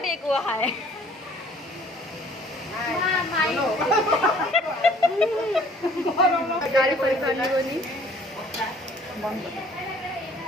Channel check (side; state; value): both; normal; correlation 0.56